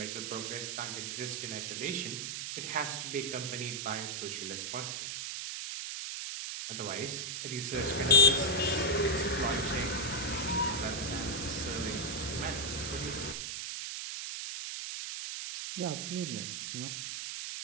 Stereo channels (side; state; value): right; noise; hiss, 4 dB below the sound